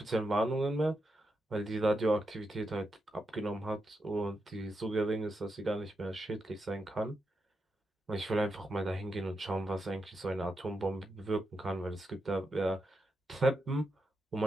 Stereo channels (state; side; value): normal; both; correlation 0.85